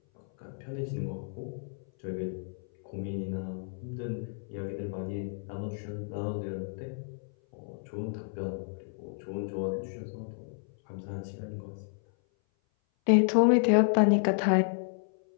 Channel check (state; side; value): silent; right; 56 dB below the other